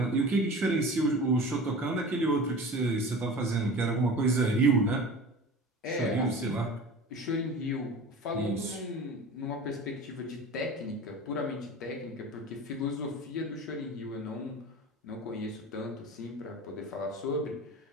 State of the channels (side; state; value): both; normal; correlation 0.36